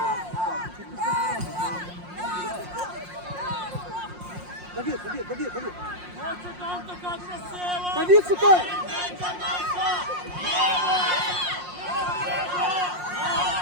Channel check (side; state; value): left; late; 5.6 ms